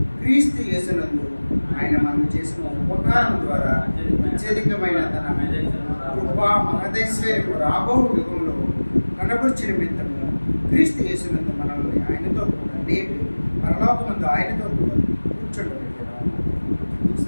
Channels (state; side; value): inverted; both; correlation -1.00